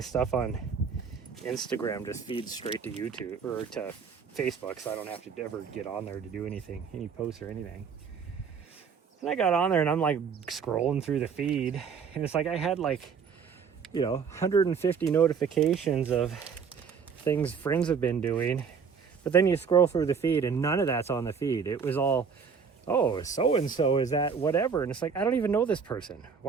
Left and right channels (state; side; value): quieter; left; 6.2 dB